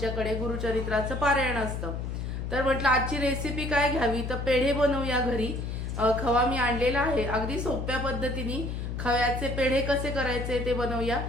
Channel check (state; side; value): noise; left; hum, 4 dB below the sound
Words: गुरुचरित्राचं पारायण असतं। तर म्हटलं आजची रेसिपी काय घ्यावी, तर पेढे बनवूया घरी। खवा मी आणलेला आहे, अगदी सोप्या पद्धतीने खव्याचे पेढे कसे करायचे ते बनवूया